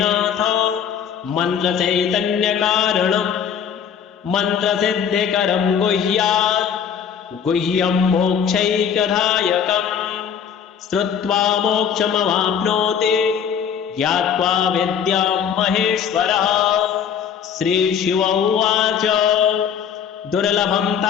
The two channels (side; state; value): right; quieter; 7.9 dB